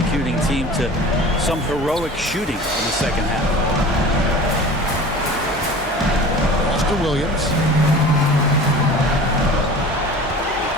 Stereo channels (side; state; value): both; normal; correlation 0.40